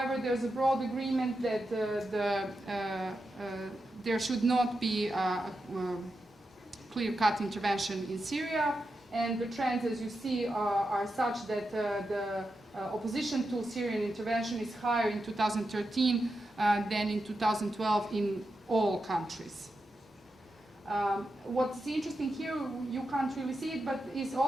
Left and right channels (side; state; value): both; normal; correlation 0.88